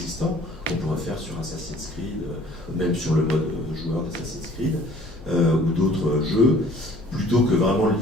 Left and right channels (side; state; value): both; normal; correlation 0.53